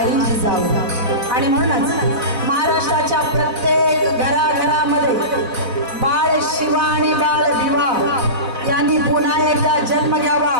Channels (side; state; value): left; late; 4.0 ms